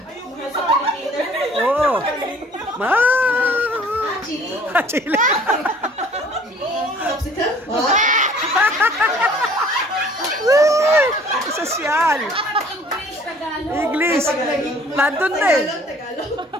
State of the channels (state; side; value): normal; both; correlation 0.53